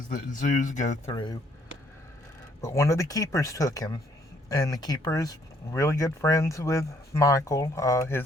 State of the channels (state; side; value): normal; both; correlation 0.66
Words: that zoos go through. But one of the keepers took him, and the keeper is really good friends with Michael.